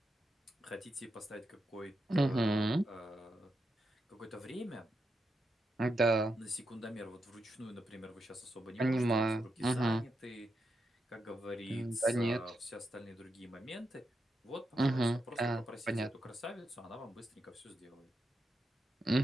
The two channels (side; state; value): both; normal; correlation 0.85